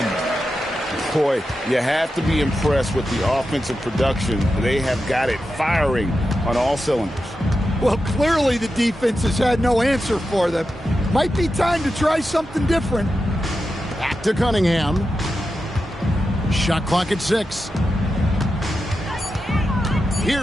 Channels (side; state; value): both; normal; correlation 0.90